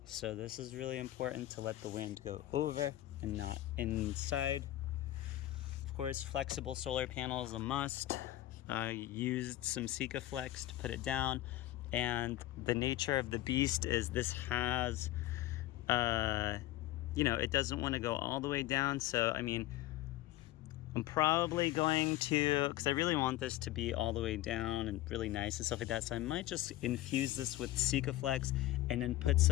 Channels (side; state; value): right; quieter; 15.3 dB